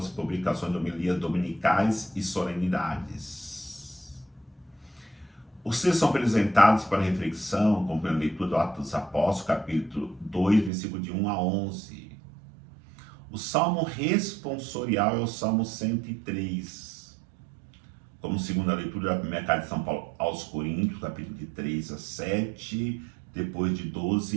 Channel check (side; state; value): left; drops out; at 10.7 s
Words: publicações de homilias dominicais e solenidades. Os textos são apresentados para reflexão, como a leitura do Atos dos Apóstolos, capítulo 2, versículo de 1 a 11. O salmo responsorial é o salmo 103. Como segunda leitura da primeira carta de São Paulo aos Coríntios, capítulo de 3 a 7, depois de